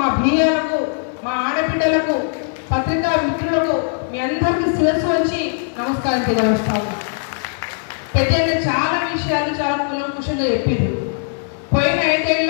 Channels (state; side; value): silent; right; 59 dB below the other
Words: బియ్యాలకు, మా ఆడబిడ్డలకు, పత్రికా మిత్రులకు మీ అందరికీ శిరస్సు వచ్చి నమస్కారం తెలియజేస్తాను. పెద్దలు చాలా విషయాలు చాలా కులంకుశంగా చెప్పింది. పోయిన 5